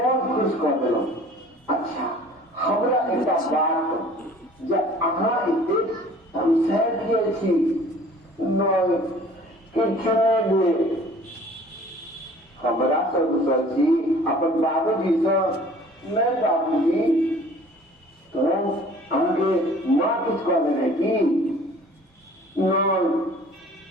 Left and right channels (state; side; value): normal; both; correlation 0.50